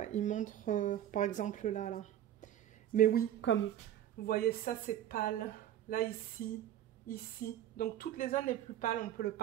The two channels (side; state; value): left; quieter; 11.5 dB